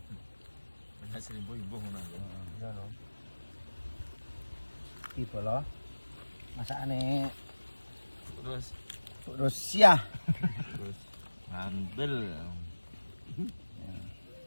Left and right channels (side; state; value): both; inverted; correlation -1.00